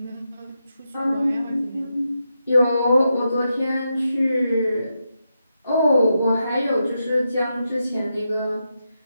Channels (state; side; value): inverted; both; correlation -0.86